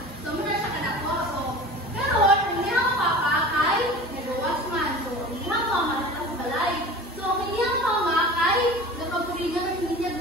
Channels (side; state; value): both; normal; correlation 0.38